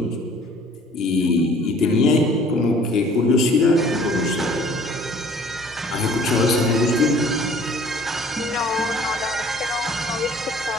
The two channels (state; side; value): normal; both; correlation 0.53